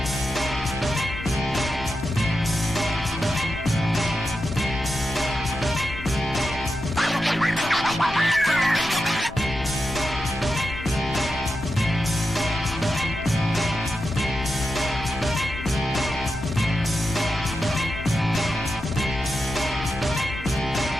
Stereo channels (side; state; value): left; noise; rumble, 13 dB below the sound